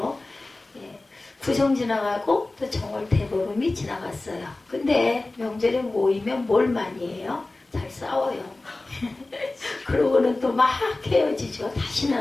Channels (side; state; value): right; quieter; 3.0 dB